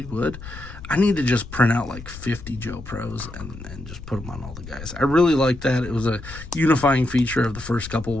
would. I need to just print out like 50 Joe Pros and just put them on all the guys. I really like that. It was a unifying feature of the first couple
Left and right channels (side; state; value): left; noise; rumble, 13 dB below the sound